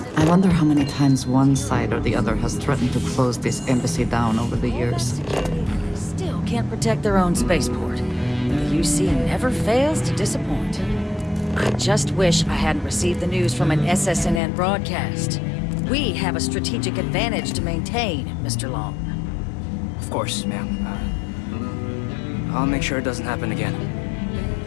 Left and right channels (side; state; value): right; drops out; at 14.4 s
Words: I wonder how many times one side or the other has threatened to close this embassy down over the years. Still can't protect their own spaceport. The UC never fails to disappoint. I just wish I hadn't received the news from an SSNN broadcast. We have a strategic advantage to maintain, Mr. Long. Of course, ma'am. I'll make sure it doesn't happen again.